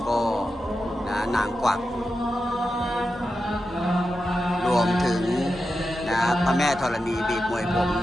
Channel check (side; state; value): both; normal; correlation 0.90